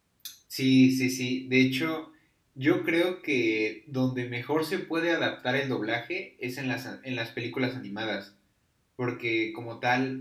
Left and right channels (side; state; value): both; identical; correlation 1.00